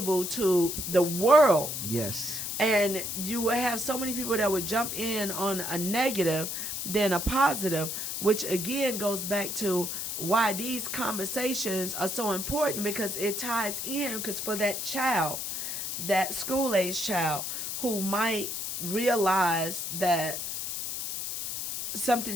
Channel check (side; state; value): left; noise; hiss, 4 dB below the sound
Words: to the world. Yes. And you will have so many people that would jump in on a negative than a positive, which again goes back to why these conversations are so important, because it ties in, because for that child, that school-age child who might realize that